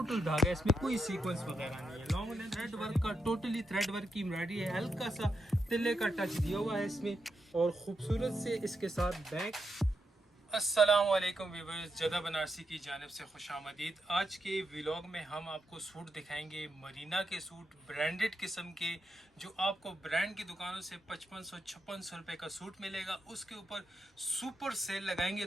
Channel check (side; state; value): both; normal; correlation 0.84